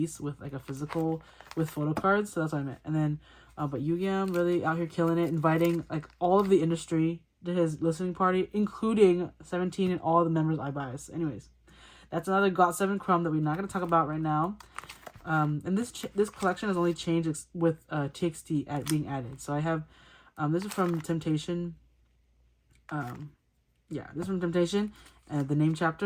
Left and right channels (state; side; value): identical; both; correlation 1.00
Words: with like a physical with photocards. So that's what I meant. And then, but Yugyeom really out here killing it, inviting like all of the industry to his listening party, including 17 and all the members I bias. Anyways, that's another got7 crumb that we're not going to talk about right now. And this collection has only changed with TXT being added. So I have this is from Temptation. Yeah, this is from Temptation. The name